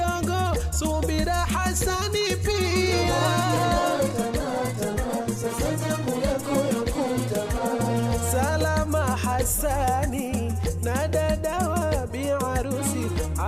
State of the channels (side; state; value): both; identical; correlation 1.00